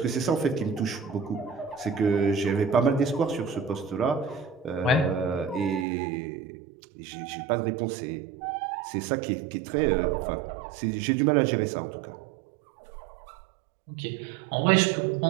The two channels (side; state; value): left; drops out; at 5.9 s